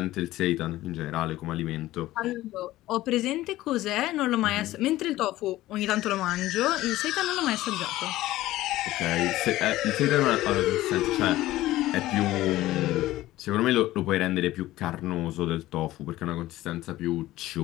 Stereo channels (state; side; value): quieter; right; 16.2 dB